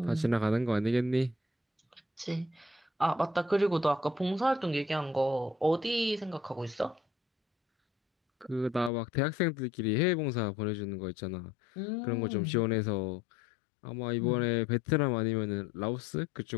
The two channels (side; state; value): right; drops out; at 8.9 s